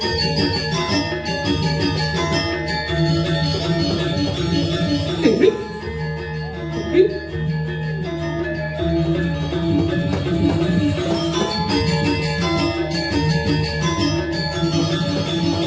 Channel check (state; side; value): identical; both; correlation 1.00